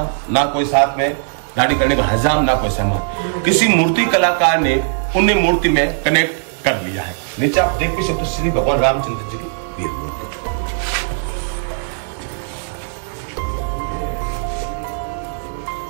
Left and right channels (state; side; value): silent; left; digital silence